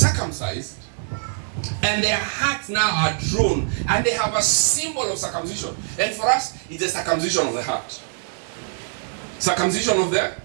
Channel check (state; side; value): silent; left; digital silence